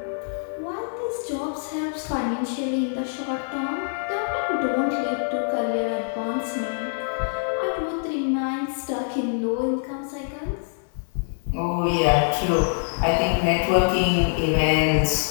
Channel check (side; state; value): right; silent; 57 dB below the other